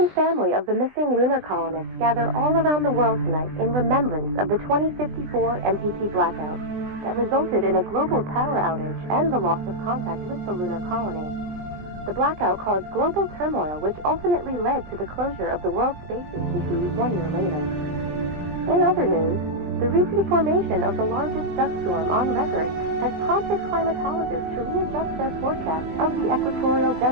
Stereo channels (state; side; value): late; left; 20 ms